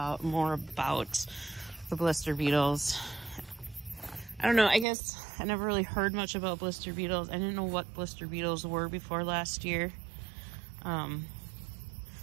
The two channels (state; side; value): drops out; left; at 4.9 s